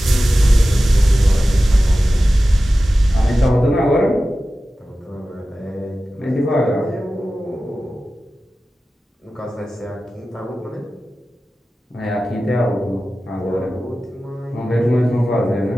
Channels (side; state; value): both; normal; correlation 0.95